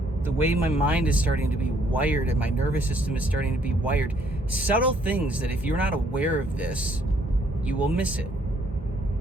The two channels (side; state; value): both; normal; correlation 0.66